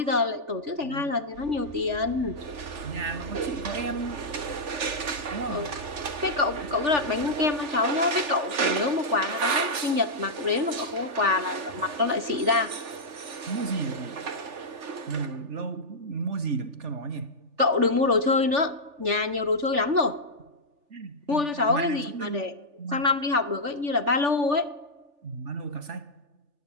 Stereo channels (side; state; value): left; late; 3.4 ms